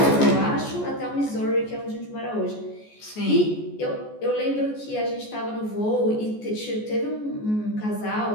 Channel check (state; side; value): late; right; 14 ms